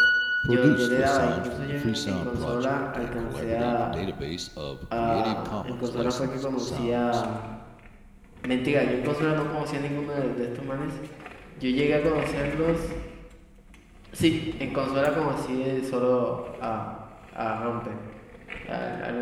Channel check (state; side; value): identical; both; correlation 1.00